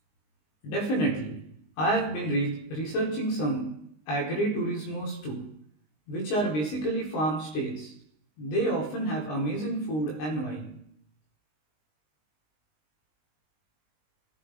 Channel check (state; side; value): late; right; 20 ms